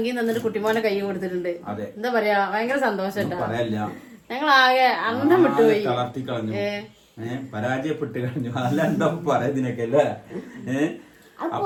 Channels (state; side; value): identical; both; correlation 1.00